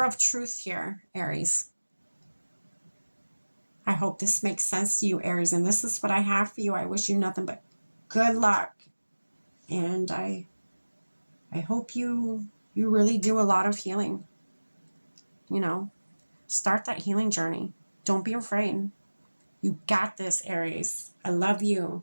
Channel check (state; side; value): inverted; both; correlation -1.00